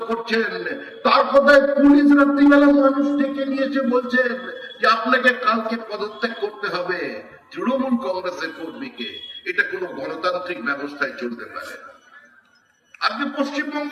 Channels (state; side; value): identical; both; correlation 1.00